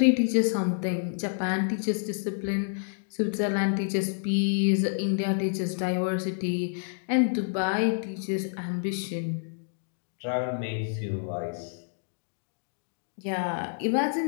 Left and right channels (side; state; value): right; silent; digital silence